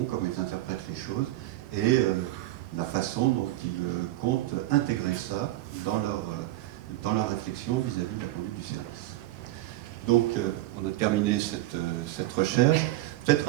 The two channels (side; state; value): left; quieter; 16.4 dB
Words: comment ils interprètent les choses et la façon dont ils comptent intégrer ça dans leur réflexion vis-à-vis de la conduite du service. Donc, on a terminé cette recherche. Peut-être